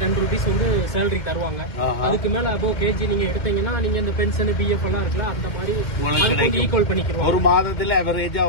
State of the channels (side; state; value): right; late; 2.1 ms